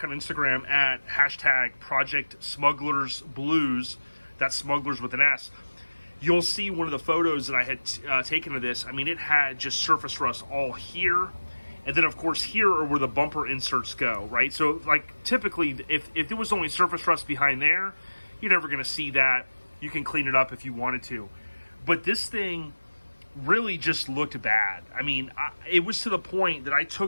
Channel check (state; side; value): inverted; both; correlation -1.00